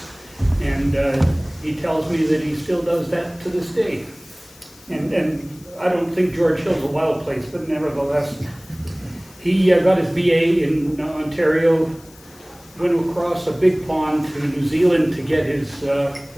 And he tells me that he still does that to this day. And I don't think George Hill's a wild place, but nevertheless, he got his BA in Ontario, went across a big pond to New Zealand to get his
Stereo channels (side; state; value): left; noise; hiss, 24 dB below the sound